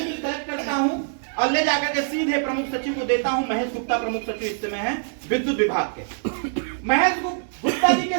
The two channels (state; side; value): silent; left; digital silence